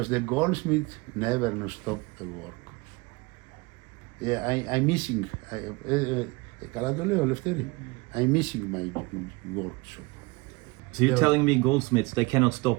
the goldsmith never no stop the work. Yeah, I'm missing. I'm missing my workshop. So you're telling me goldsmiths, they cannot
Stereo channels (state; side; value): quieter; left; 24.9 dB